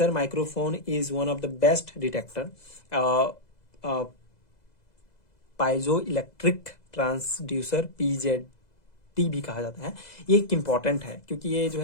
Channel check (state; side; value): late; right; 2.0 ms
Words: microphone is one of the best detector. Piezo electric transducer PZT भी कहा जाता है। ये एक इंपॉर्टेंट है, क्योंकि ये जो